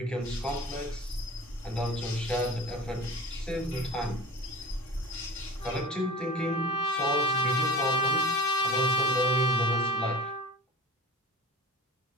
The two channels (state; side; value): normal; both; correlation 0.39